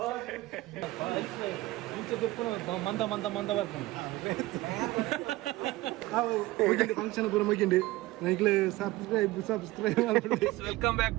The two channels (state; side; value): quieter; left; 18.8 dB